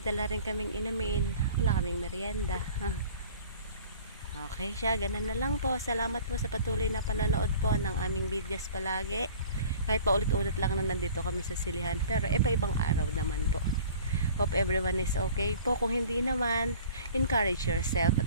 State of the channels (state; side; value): inverted; both; correlation -0.46